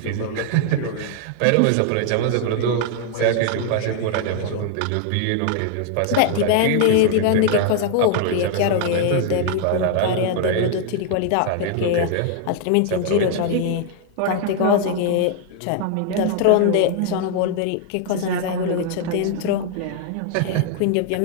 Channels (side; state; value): both; different; correlation 0.00